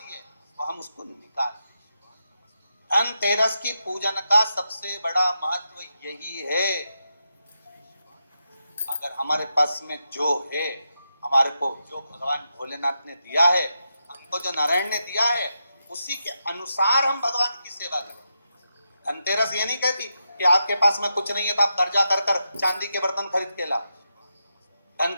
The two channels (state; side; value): inverted; both; correlation -0.86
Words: है, वो हम उसको निकाल। धनतेरस की पूजन का सबसे बड़ा महत्व यही है। अगर हमारे पास में जो है, हमारे को जो भगवान भोलेनाथ ने दिया है, हमको जो नारायण ने दिया है, उसी के अनुसार हम भगवान की सेवा करें। धनतेरस ये नहीं कहती कि आपके पास में कुछ नहीं है तो आप कर्जा कर कर चांदी के बर्तन खरीद के ला।